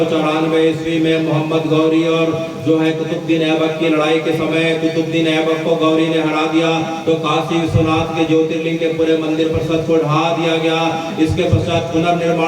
ईस्वी में मोहम्मद गौरी और जो है कुतुबुद्दीन ऐबक की लड़ाई के समय कुतुबुद्दीन ऐबक को गौरी ने हरा दिया, तो काशी विश्वनाथ के ज्योतिर्लिंग के पूरे मंदिर परिसर को ढा दिया गया। इसके पश्चात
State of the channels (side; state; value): both; identical; correlation 1.00